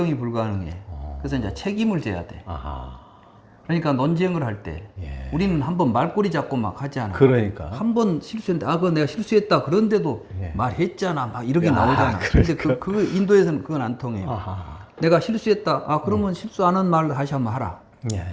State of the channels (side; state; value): both; identical; correlation 1.00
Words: 불가능해. 그래서 이제 책임을 져야 돼. 그러니까 논쟁을 할 때 우리는 한번 말꼬리 잡고 막 하지 않아. 그러니까. 한번 실수했는데 그거 내가 실수했다. 그런데도 말했잖아. 막 이렇게 나오잖아. 근데 그 인도에서는 그건 안 통해요. 내가 실수했다. 그러면 실수 안 한 말 다시 한번 하라.